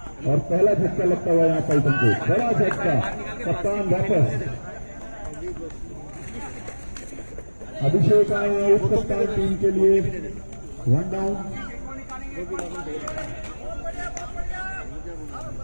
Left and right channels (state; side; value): inverted; both; correlation -1.00